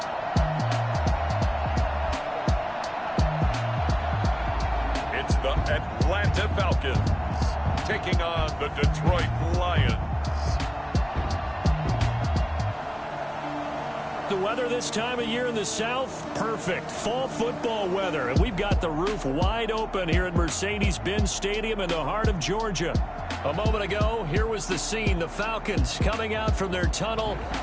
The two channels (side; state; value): both; identical; correlation 1.00